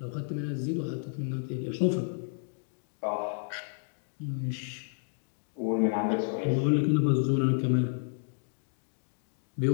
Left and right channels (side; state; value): right; silent; digital silence